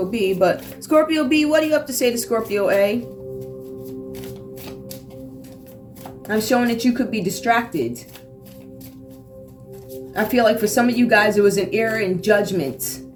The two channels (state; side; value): identical; both; correlation 1.00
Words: B. But Scorpio B, what do you have to say to Scorpio A? I'm showing that you could be distracted. I feel like for some of you guys, it was an error in judgment.